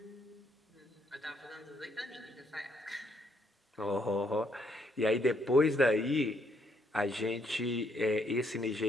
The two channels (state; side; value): normal; both; correlation 0.72